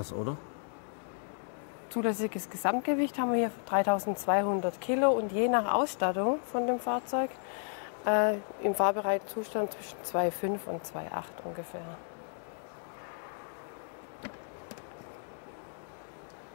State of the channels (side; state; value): right; silent; 56 dB below the other